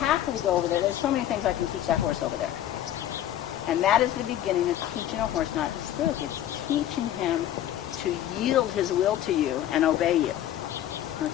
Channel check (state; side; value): quieter; right; 11.9 dB